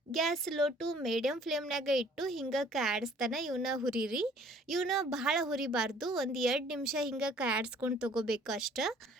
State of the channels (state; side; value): normal; both; correlation 0.55